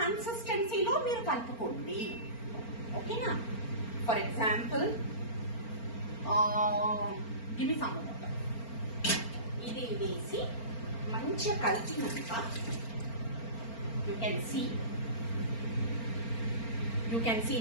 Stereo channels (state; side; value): late; right; 4.4 ms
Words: మీరు కలుపుకోండి. ఓకేనా? For example give me some water. ఇది వేసి మంచిగా కలిపినాక యూ కెన్ సీ